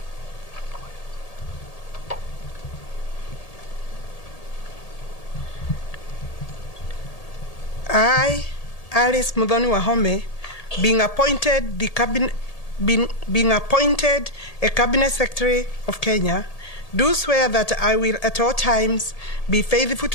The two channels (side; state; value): right; late; 1.8 ms